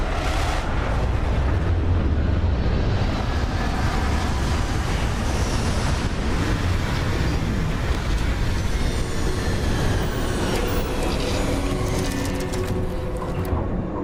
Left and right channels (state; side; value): identical; both; correlation 1.00